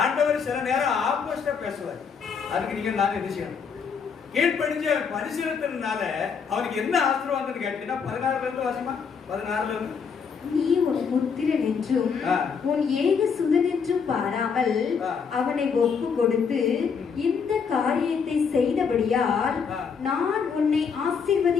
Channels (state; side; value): quieter; right; 6.1 dB